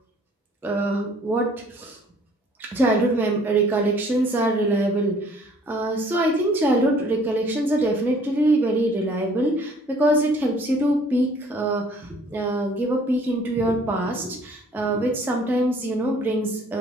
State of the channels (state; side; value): normal; both; correlation 0.57